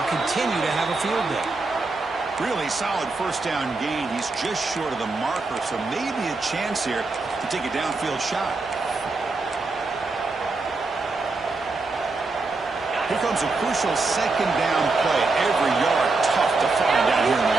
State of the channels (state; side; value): quieter; left; 3.6 dB